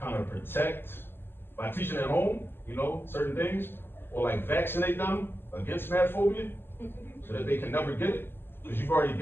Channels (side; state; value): right; late; 0.10 ms